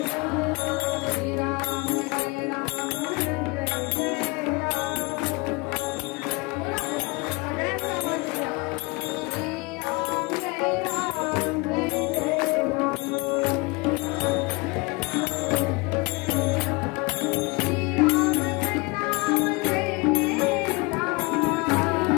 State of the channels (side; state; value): right; quieter; 26.3 dB